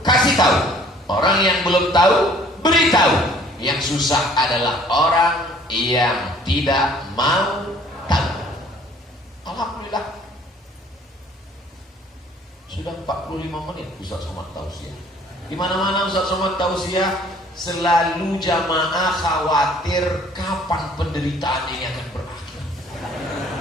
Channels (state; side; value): normal; both; correlation 0.56